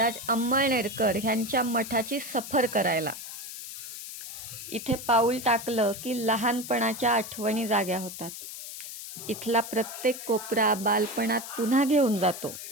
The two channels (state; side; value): noise; left; hiss, 10 dB below the sound